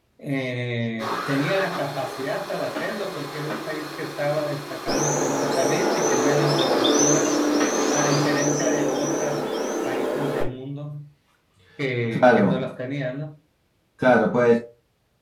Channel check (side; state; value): both; identical; correlation 1.00